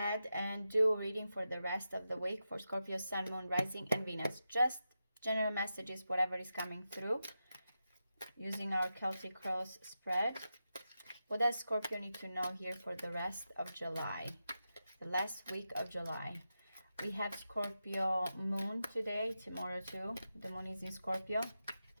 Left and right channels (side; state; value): both; inverted; correlation -0.89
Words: and do a reading for the rest of the week for Scorpio, Sun, Moon, Rising, and Venus. Just general messages, whatever is coming through, using our Celtic Cross spread. What does Scorpio need to know here for the rest of July? The last week of July. We have Scorpio Moon today, tomorrow too. The Moon is in Scorpio.